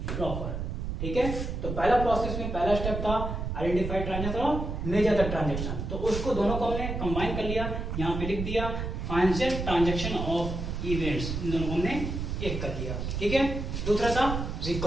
प्रॉपर। ठीक है, तो पहला प्रोसेस में पहला स्टेप था आइडेंटिफाई ट्रांजैक्शन और मेजर द ट्रांजैक्शन, तो उसको दोनों को हमने कंबाइन कर लिया, यहाँ पे लिख दिया फाइनेंशियल ट्रांजैक्शन ऑफ इवेंट्स, इन दोनों को हमने एक कर लिया। ठीक है, दूसरा था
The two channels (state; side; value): noise; right; rumble, 4 dB below the sound